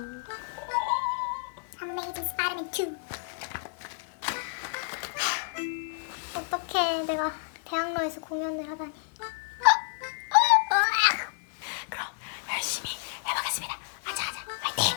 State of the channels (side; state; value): right; silent; digital silence